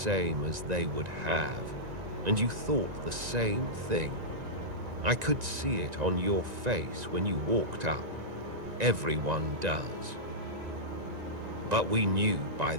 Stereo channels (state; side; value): late; left; 1.9 ms